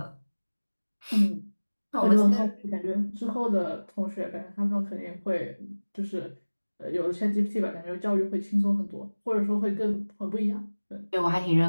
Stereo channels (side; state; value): both; inverted; correlation -1.00